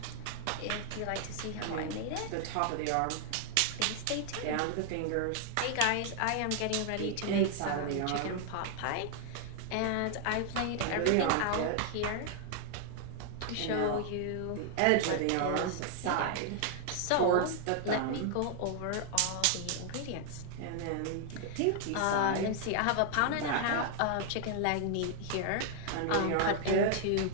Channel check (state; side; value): different; both; correlation 0.00